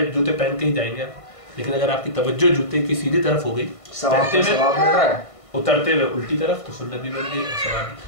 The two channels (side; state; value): right; late; 1.5 ms